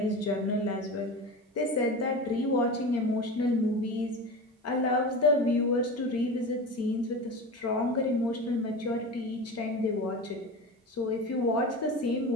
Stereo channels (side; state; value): both; normal; correlation 0.28